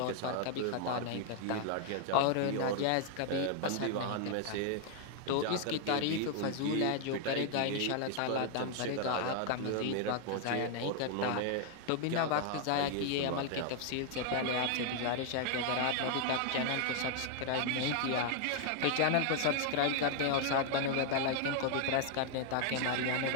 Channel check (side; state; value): both; different; correlation 0.00